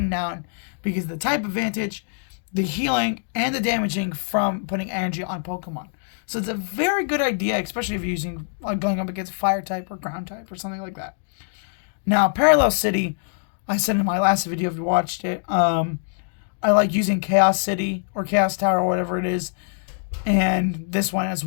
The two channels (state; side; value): silent; right; 63 dB below the other